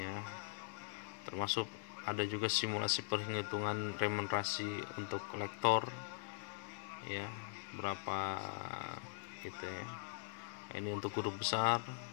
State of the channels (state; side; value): silent; right; digital silence